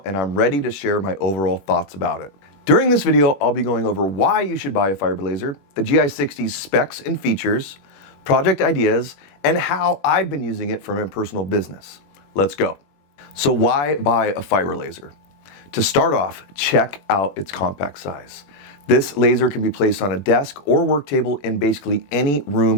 and I'm ready to share my overall thoughts about it. During this video, I'll be going over why you should buy a fiber laser, the GI60's specs and features, project ideas, and how I've been using it for my personal business. Let's go. So why buy a fiber laser? To start off, check out its compact size. This laser can be placed on a desk or work table in basically any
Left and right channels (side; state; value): right; late; 21 ms